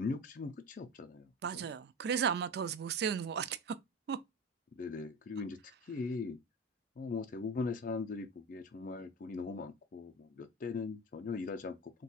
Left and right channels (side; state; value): both; normal; correlation 0.27